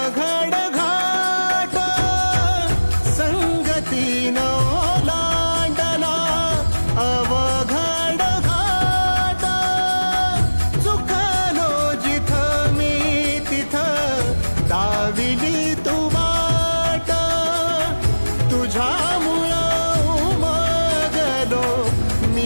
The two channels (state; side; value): inverted; both; correlation -1.00